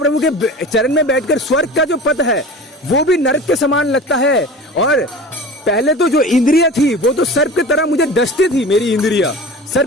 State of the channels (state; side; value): normal; both; correlation 0.36